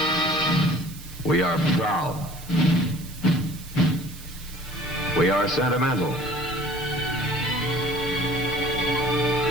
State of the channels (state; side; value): noise; right; hiss, 17 dB below the sound